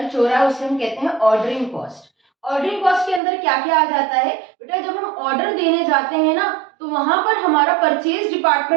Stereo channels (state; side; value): drops out; left; at 3.2 s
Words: हो रहा है उसे हम कहते हैं ऑर्डरिंग कॉस्ट। ऑर्डरिंग कॉस्ट के अंदर क्या क्या आ जाता है बेटा, जब हम ऑर्डर देने जाते हैं ना तो वहां पर हमारा परचेज